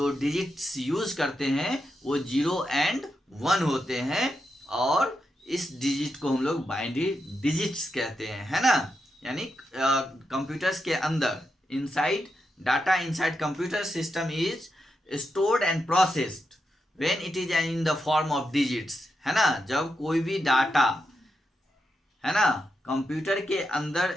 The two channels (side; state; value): both; normal; correlation 0.86